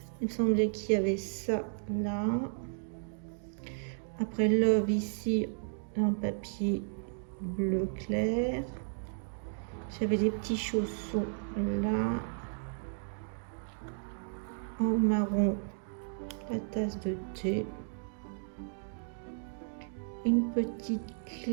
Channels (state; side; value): silent; left; digital silence